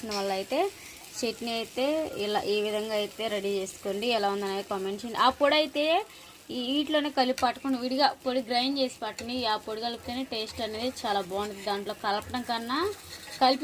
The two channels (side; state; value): both; identical; correlation 1.00